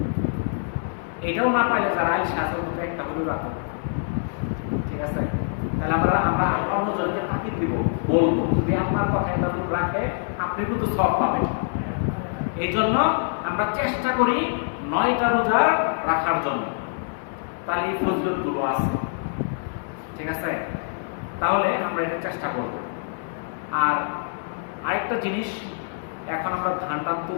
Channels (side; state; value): right; silent; 62 dB below the other